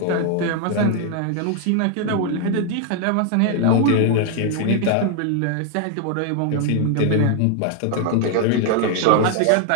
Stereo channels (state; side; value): different; both; correlation 0.00